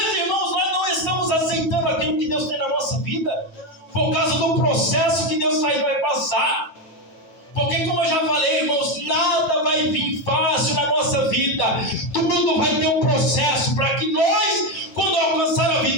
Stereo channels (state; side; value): late; right; 9.1 ms